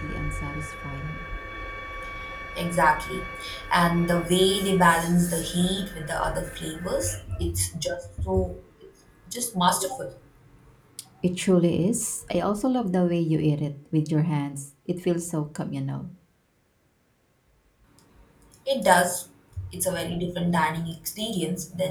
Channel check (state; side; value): identical; both; correlation 1.00